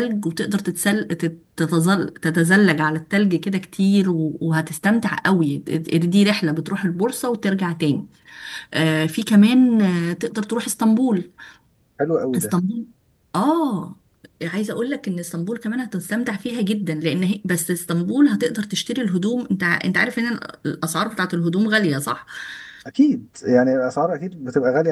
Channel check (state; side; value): identical; both; correlation 1.00